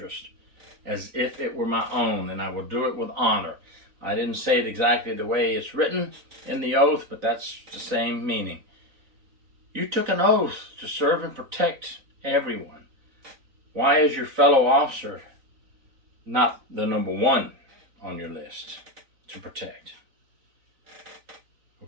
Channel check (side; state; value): left; late; 3.9 ms